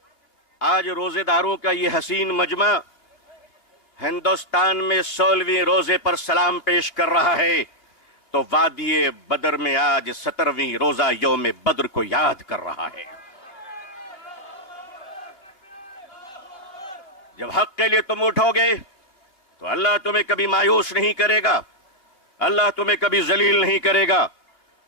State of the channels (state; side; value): late; right; 2.8 ms